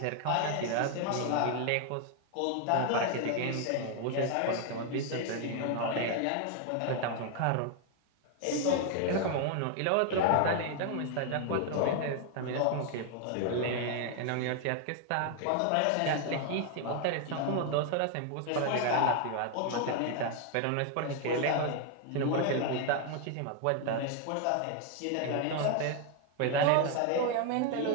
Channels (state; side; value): different; both; correlation 0.01